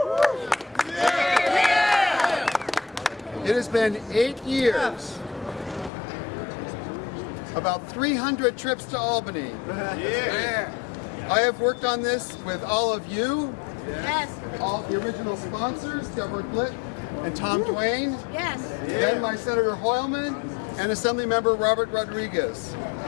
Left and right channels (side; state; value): right; drops out; at 5.9 s